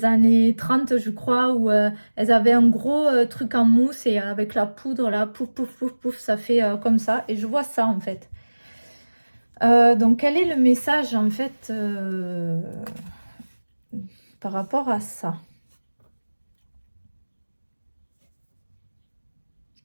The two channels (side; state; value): both; inverted; correlation -1.00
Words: années 30, je crois, où elles avaient un gros truc en mousse et avec la poudre, là, pouf, pouf, pouf, pouf, ça fait comme ça. Et je vois ça, en fait. Donc, quel est le message, en fait, par rapport à ça?